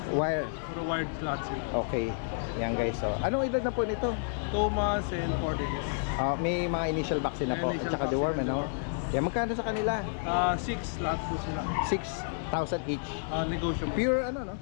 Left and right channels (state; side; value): silent; right; digital silence